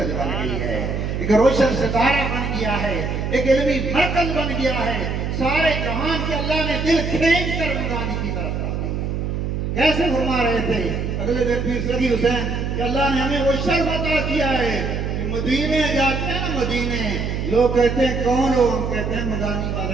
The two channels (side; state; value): right; noise; hum, 2 dB below the sound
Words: بن گئی ہے ایک روشن ستارہ بن گیا ہے ایک علمی مرکز بن گیا ہے سارے جہان کے اللہ نے دل کھینچ کر مدانی کی طرف کر دی کیسے فرما رہے تھے اگلے دن پیر سخی حسین کہ اللہ نے ہمیں وہ شرف عطا کیا ہے کہ مدینے جاتے ہیں مدینے لوگ کہتے ہیں کون ہو ہم کہتے ہیں مدانی